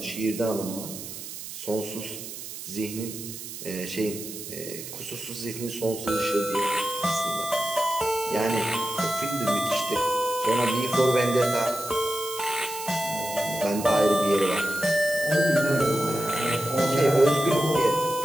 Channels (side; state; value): right; noise; hiss, 10 dB below the sound